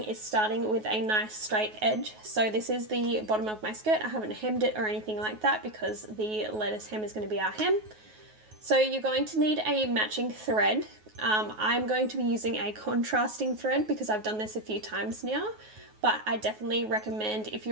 is starting with a nice straight edge. So this is the bottom of my skirt. I haven't hemmed it or anything like that because the lettuce hem is going to be our hem. So you're going to need a matching thread. I'm going to be using a contrasting thread because I've done this a few times now, but I definitely recommend if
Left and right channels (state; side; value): late; left; 9.4 ms